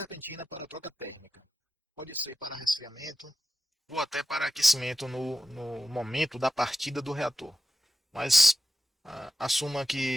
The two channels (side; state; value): both; normal; correlation 0.92